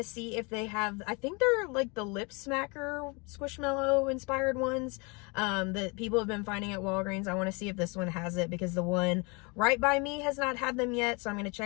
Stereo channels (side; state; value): right; quieter; 30.0 dB